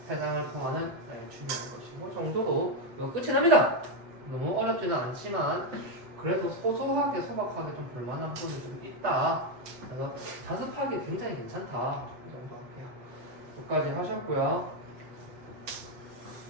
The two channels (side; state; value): left; late; 8.1 ms